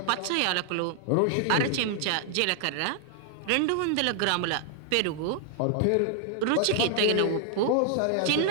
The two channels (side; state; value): both; different; correlation 0.00